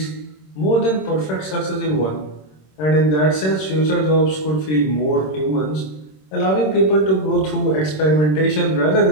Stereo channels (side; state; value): right; late; 26 ms